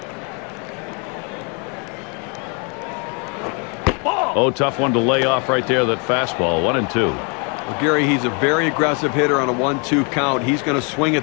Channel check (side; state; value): right; quieter; 34.9 dB